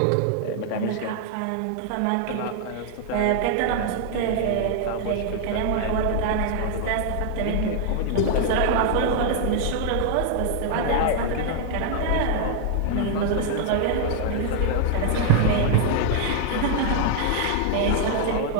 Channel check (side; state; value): both; different; correlation 0.00